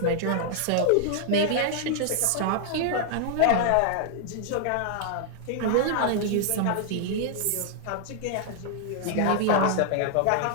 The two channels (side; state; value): both; different; correlation -0.01